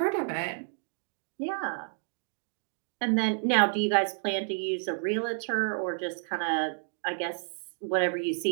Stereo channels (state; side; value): silent; left; digital silence